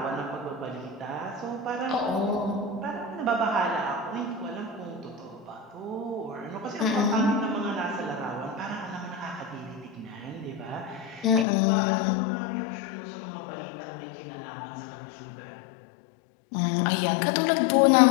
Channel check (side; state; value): right; drops out; at 11.5 s